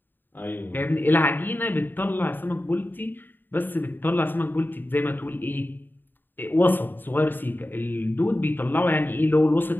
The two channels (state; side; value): late; right; 0.093 ms